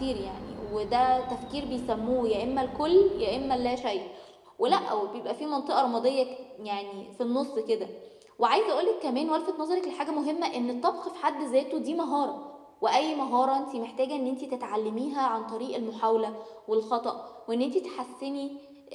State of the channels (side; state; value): both; identical; correlation 1.00